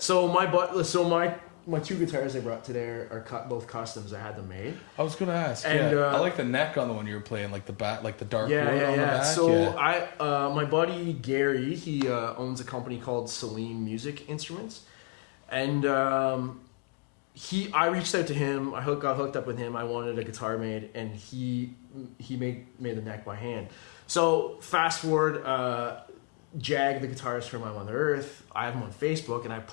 my two guitars I brought today are both customs. I had them made. I was gonna ask. And, I like the neck on the one you were playing, like the back, like the dark wood on the back. So yeah. my buddy Gary, he owns a company called Celine Music Instruments, and I reached out to him. I got hooked up with him. I wanted a guitar made, and he made the neck by hand. So fast forward, Jag, the guitarist from My Mother Earth, I have him on Facebook, and I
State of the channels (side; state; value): right; quieter; 31.7 dB